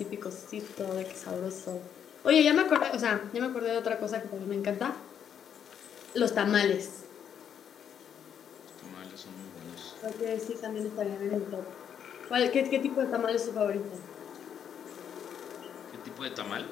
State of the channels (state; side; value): quieter; right; 8.5 dB